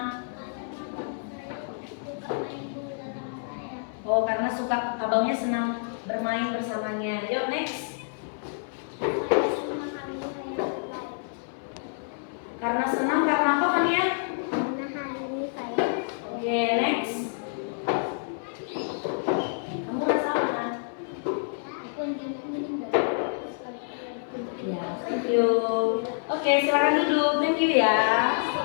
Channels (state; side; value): silent; right; 59 dB below the other